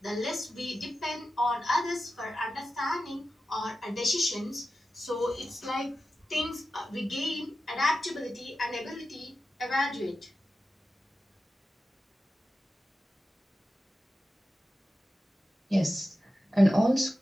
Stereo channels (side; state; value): both; normal; correlation 0.92